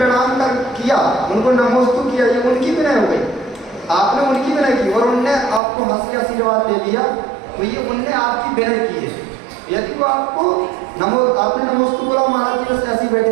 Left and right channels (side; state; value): left; drops out; at 5.6 s